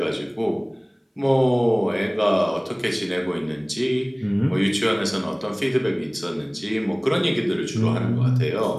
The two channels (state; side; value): identical; both; correlation 1.00